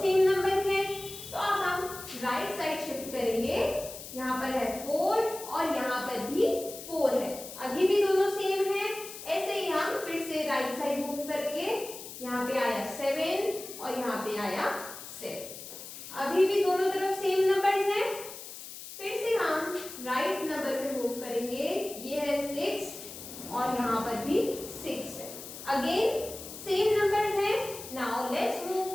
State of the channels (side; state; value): left; noise; hiss, 12 dB below the sound